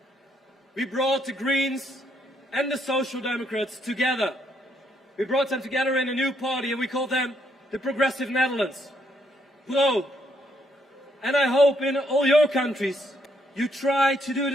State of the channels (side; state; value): both; normal; correlation 0.73